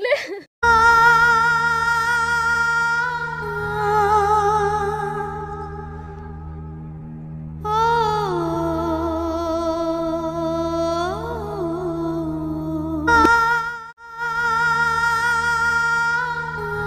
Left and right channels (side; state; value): both; identical; correlation 1.00